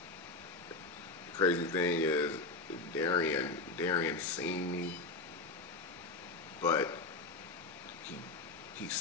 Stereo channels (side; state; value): right; quieter; 3.6 dB